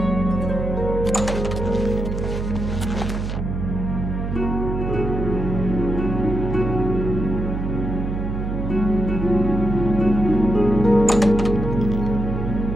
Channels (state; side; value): noise; right; hum, 3 dB below the sound